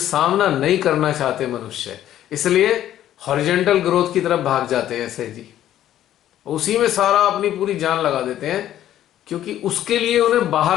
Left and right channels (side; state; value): right; quieter; 12.1 dB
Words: नहीं करना चाहते मनुष्य, इसलिए हॉरिजॉन्टल ग्रोथ की तरफ भाग जाते हैं ऐसे जी, उसी में सारा अपनी पूरी जान लगा देते हैं, क्योंकि उसके लिए उन्हें